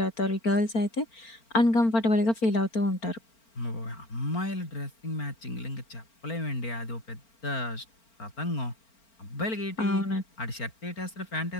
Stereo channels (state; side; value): late; right; 4.4 ms